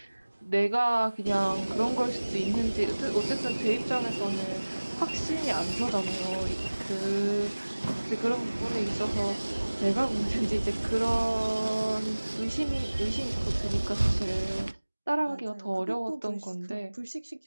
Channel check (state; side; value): inverted; both; correlation -1.00